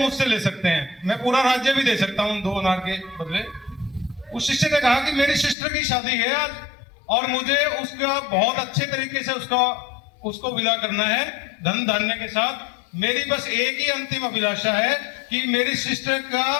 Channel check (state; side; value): drops out; right; at 5.6 s